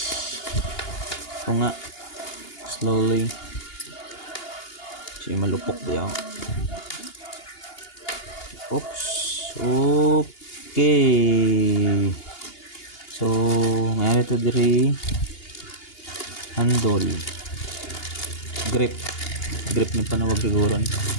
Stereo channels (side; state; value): right; late; 2.8 ms